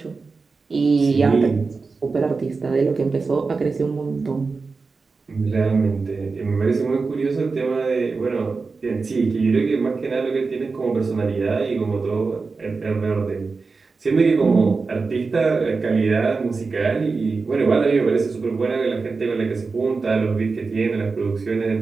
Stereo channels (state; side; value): quieter; left; 4.4 dB